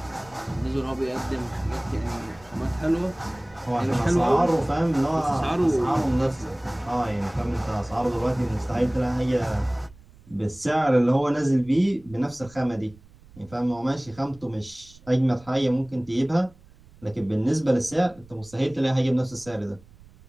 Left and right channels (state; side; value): noise; right; rumble, 24 dB below the sound